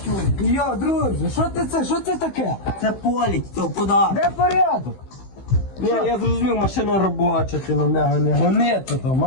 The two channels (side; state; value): right; late; 15 ms